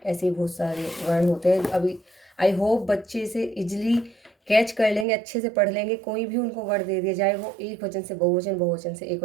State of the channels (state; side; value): drops out; left; at 5.1 s